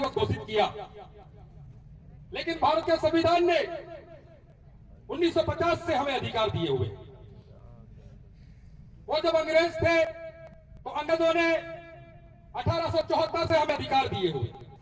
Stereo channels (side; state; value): both; identical; correlation 1.00